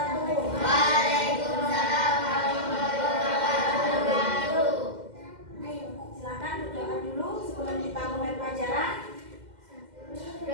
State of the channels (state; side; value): late; left; 2.1 ms